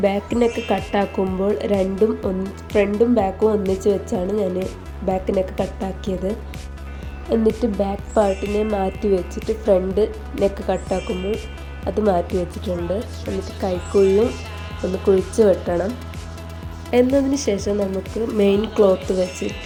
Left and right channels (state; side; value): identical; both; correlation 1.00